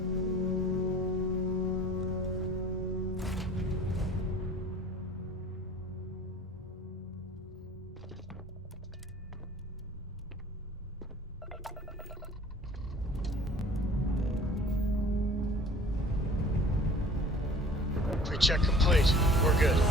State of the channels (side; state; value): both; normal; correlation 0.48